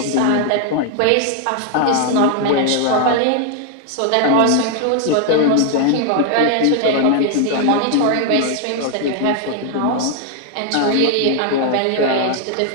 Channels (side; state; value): both; different; correlation 0.00